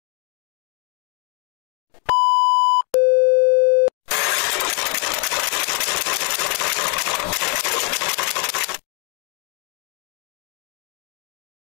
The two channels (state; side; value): quieter; right; 39.0 dB